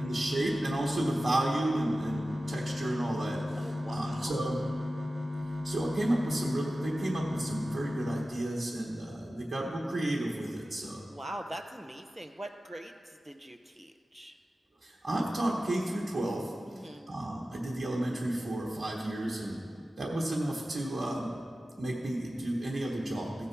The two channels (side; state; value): both; normal; correlation 0.95